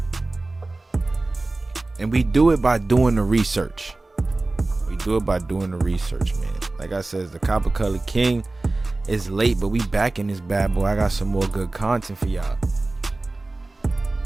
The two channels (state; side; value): quieter; left; 3.0 dB